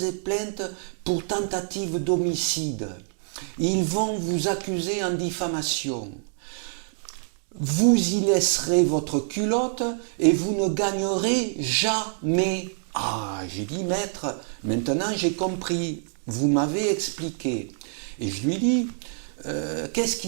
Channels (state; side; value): silent; left; 61 dB below the other